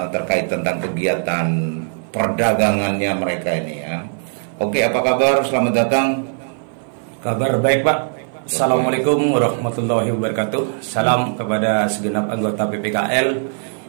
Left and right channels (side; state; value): left; silent; 56 dB below the other